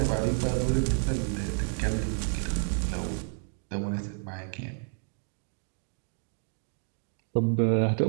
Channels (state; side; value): silent; left; 58 dB below the other